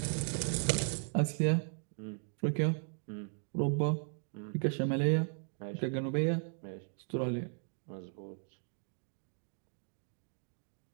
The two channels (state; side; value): silent; left; 53 dB below the other